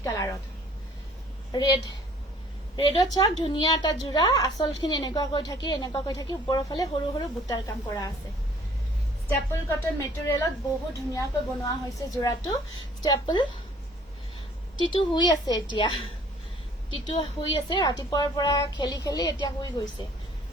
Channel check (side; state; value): both; normal; correlation 0.56